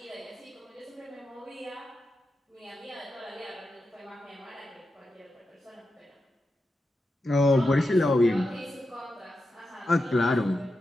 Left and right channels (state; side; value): normal; both; correlation 0.89